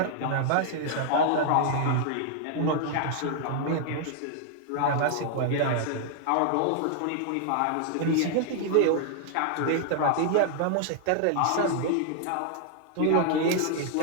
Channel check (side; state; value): both; different; correlation -0.01